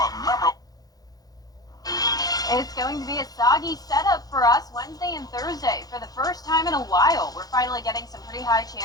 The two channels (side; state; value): right; late; 0.18 ms